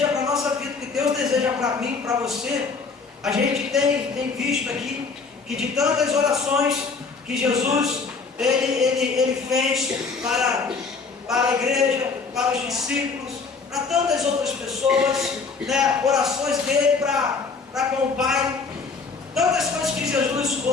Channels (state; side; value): quieter; right; 4.7 dB